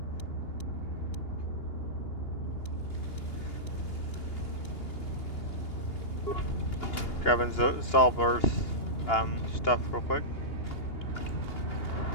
Grabbing Zolber's stuff real quick.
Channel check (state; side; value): late; right; 2.8 ms